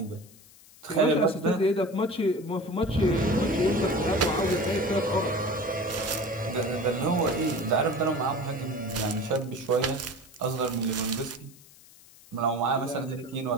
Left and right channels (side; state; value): left; noise; hiss, 24 dB below the sound